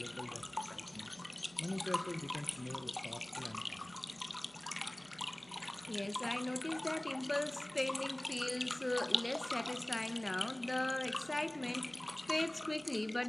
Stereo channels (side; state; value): right; noise; hum, 27 dB below the sound